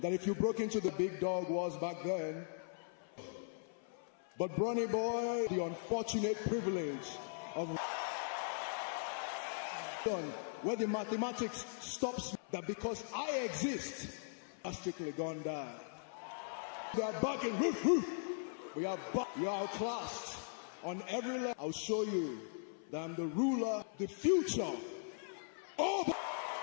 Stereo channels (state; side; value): silent; right; 51 dB below the other